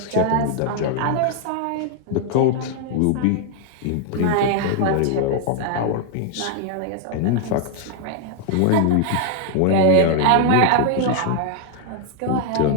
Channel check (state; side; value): different; both; correlation 0.00